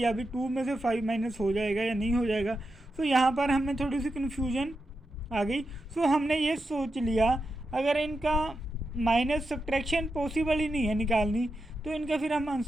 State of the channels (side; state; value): both; normal; correlation 0.88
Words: अभी 2 में से 5 माइनस हो जाएगा या नहीं हो जाएगा. सो यहाँ पर हमें थोड़ी सी कन्फ्यूजन आ गई. सो हमने ये सोच लिया अगर इनका माइनस सब्ट्रैक्शन पॉसिबल ही नहीं है निकालनी, तो इनका फिर हम